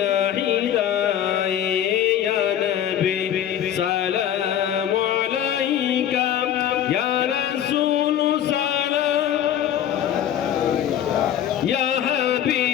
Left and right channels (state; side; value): quieter; right; 10.4 dB